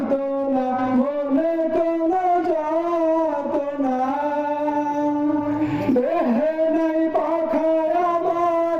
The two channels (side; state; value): both; identical; correlation 1.00